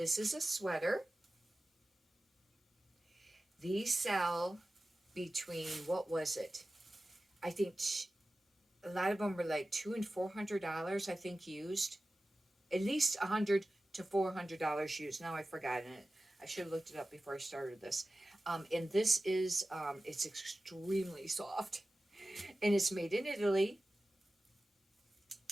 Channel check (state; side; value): normal; both; correlation 0.95